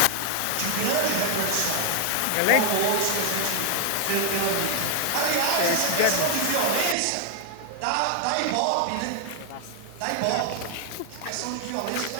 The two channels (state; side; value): different; both; correlation 0.00